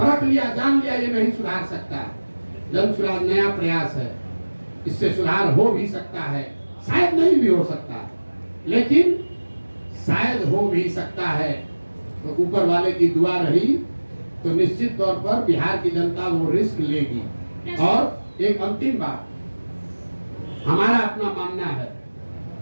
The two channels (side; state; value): both; inverted; correlation -1.00